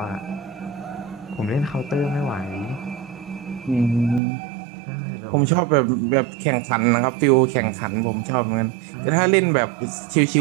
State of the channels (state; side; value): drops out; left; at 4.2 s